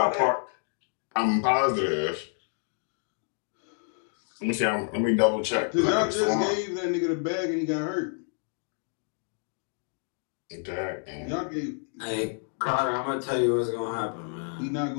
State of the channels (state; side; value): silent; right; 55 dB below the other